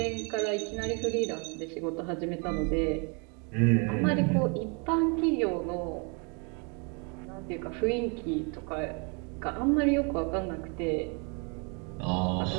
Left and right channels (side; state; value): left; quieter; 34.6 dB